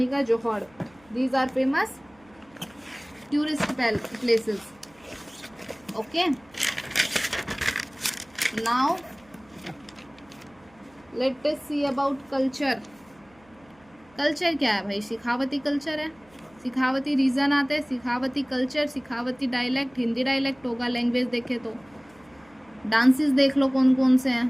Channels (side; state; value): right; noise; hum, 29 dB below the sound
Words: ka Johad. These are famous tourist places. Okay, now let us see about culture. Culture क्या है भाई, सिखावती कल्चर है. सिखावती रीजन आते हैं, सिखावती कल्चर, सिखावती डायलेक्ट, हिंदी डायलेक्ट होगा. लैंग्वेज देखे तो डांसेस देख लो कौन कौन से हैं.